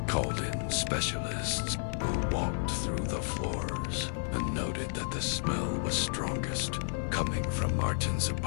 called in specialists who walked through the floors and noted that the smell was strongest coming from Martin's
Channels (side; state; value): right; silent; digital silence